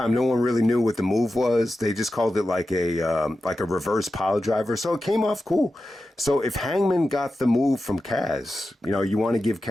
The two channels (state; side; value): normal; both; correlation 0.92